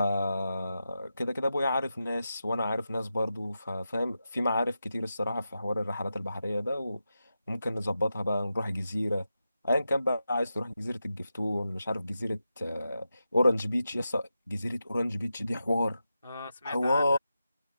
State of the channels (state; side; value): inverted; both; correlation -0.90